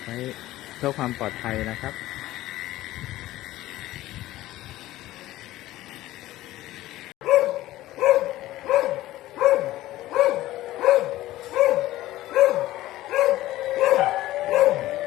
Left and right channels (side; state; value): right; quieter; 15.9 dB